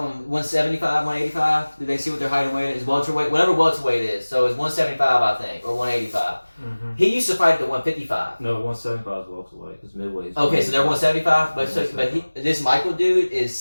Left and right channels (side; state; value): both; inverted; correlation -1.00